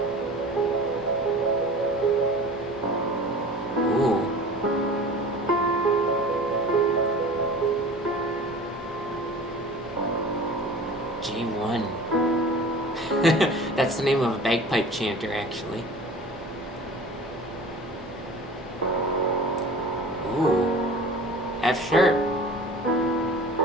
Ooh. J1. That's the name of a bagpipe chanter, actually. Ooh. F sharp.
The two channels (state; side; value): normal; both; correlation 0.40